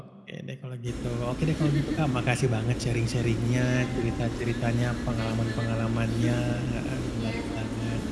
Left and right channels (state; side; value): identical; both; correlation 1.00